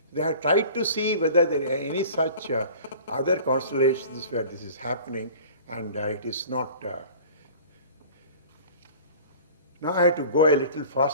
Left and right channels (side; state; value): both; inverted; correlation -0.43